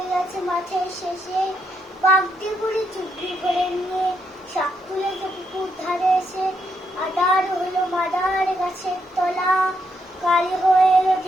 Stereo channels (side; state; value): both; normal; correlation 0.78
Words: গেছে মাঠের শেষে, বাগদি বুড়ি চুবড়ি করে নিয়ে শাক তুলেছে পুকুর ধারে এসে। আদার হলো মাদার গাছের তলা, কাল হয়ে এলো